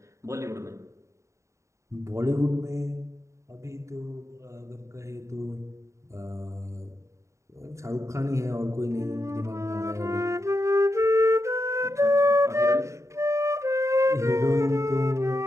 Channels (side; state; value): left; late; 0.14 ms